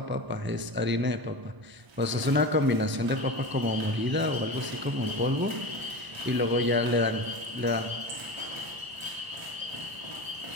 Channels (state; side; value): late; left; 1.0 ms